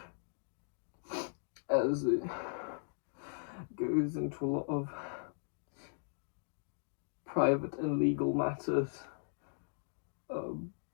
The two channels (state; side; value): silent; right; digital silence